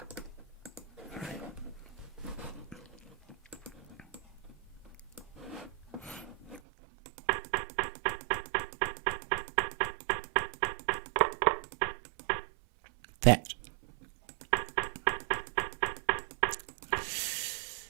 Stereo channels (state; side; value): drops out; left; at 6.6 s